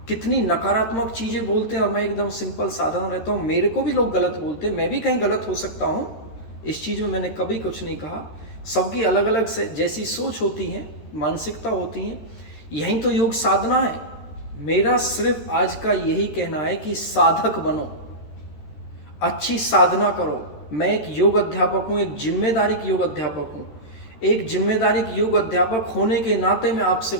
कितनी नकारात्मक चीजें बोलते हैं और मैं एकदम सिंपल साधारण रहता हूं। मेरे को भी लोग गलत बोलते हैं, मैं भी कहीं गलत हो सकता हूं, इस चीज में मैंने कभी कुछ नहीं कहा। सबकी अलग अलग से जैसी सोच होती है, मानसिकता होती है। यही तो योग साधना है। मेरा सिर्फ आज का यही कहना है कि साधक बनो, अच्छी साधना करो। मैं एक योग अध्यापक हूं, एक जिम्मेदारी योग अध्यापक हूं। एक जिम्मेदारी योग अध्यापक होने के नाते मैं आपसे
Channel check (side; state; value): right; late; 13 ms